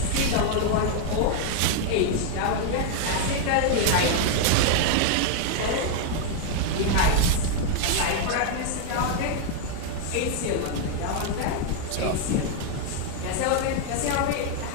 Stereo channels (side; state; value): both; different; correlation 0.00